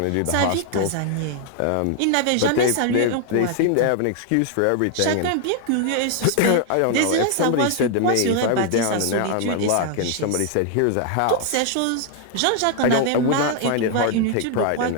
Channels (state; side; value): different; both; correlation 0.00